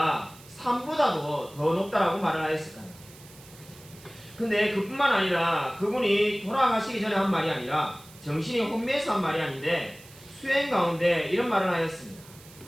산보다도 더 높다라고 말을 하였을까요? 근데 그뿐만 아니라 그분이 돌아가시기 전에 한 말이 아니라 정신이 혼미해서 한 말이 아닌데 수행 가운데 이런 말을 하였습니다.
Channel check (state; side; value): noise; right; hiss, 22 dB below the sound